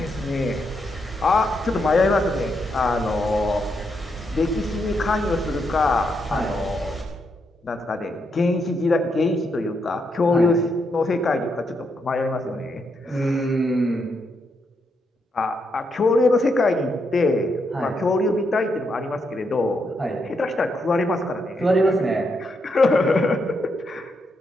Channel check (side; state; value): both; normal; correlation 0.80